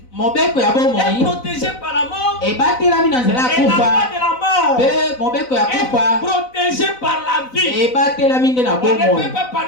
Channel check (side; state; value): right; late; 4.0 ms